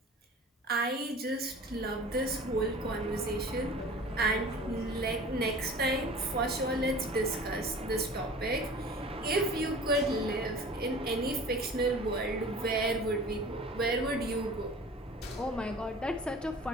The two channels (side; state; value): both; normal; correlation 0.42